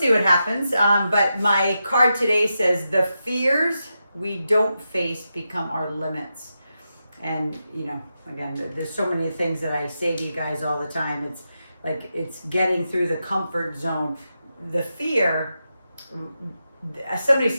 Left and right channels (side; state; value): both; inverted; correlation -0.88